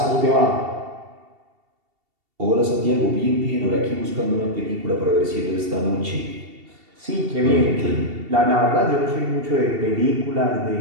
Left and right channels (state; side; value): late; left; 2.7 ms